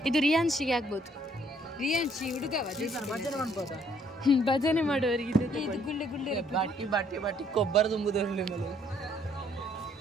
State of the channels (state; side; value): normal; both; correlation 0.65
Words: ಇದು ರಿಯಾನ್ಶಿಗೆ ಆಗ್ಬೋದು. ರಿಯಾನ್ಶಿ ಹುಡುಗವ ಭಜನೆ ಮಾಡೋರಿಗೆ ಇದು ಗುಳ್ಳೆ ಗುಳ್ಳೆ ಬಾಟಿ ಬಾಟಿ ಬಾಟಿ ಕೊಬ್ಬರ ತುಂಬುದರಲ್ಲಿ ಮೇಲೆ